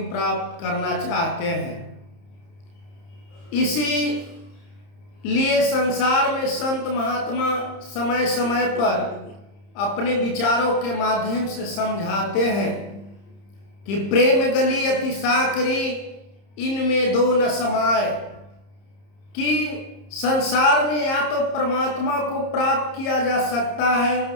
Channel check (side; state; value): right; late; 30 ms